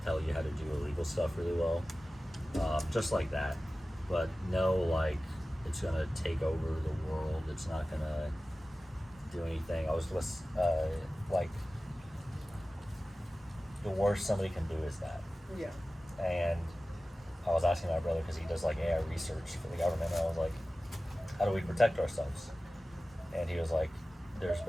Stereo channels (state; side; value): normal; both; correlation 0.96